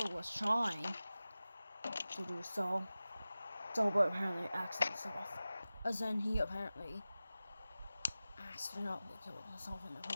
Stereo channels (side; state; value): both; inverted; correlation -0.96